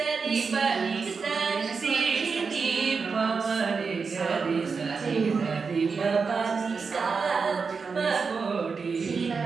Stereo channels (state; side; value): quieter; left; 5.1 dB